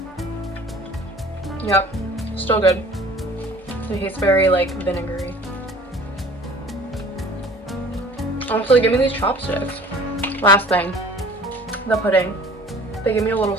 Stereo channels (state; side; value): normal; both; correlation 0.48